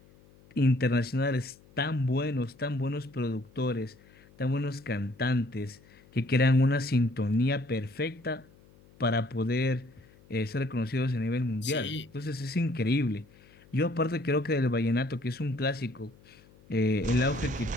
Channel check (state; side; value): noise; left; hum, 27 dB below the sound